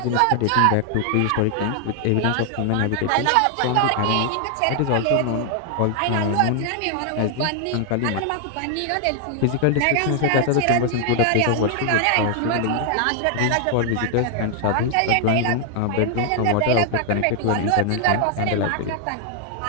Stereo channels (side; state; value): both; different; correlation 0.00